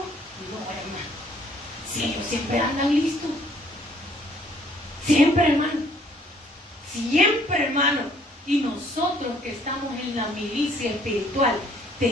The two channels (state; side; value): normal; both; correlation 0.62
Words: hermano. Si ellos siempre andan listos. Siempre, hermano. Siempre, hermano. Y nosotros que estamos en la milicia espiritual,